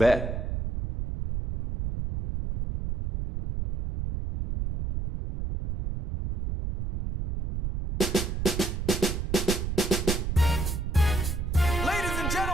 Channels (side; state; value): right; noise; rumble, 3 dB below the sound